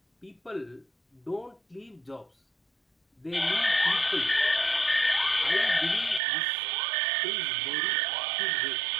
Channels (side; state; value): left; drops out; at 6.2 s